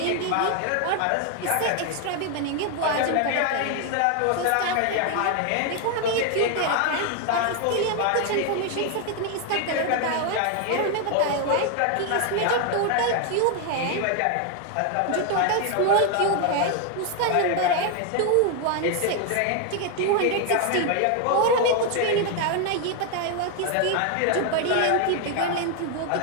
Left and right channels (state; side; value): different; both; correlation 0.01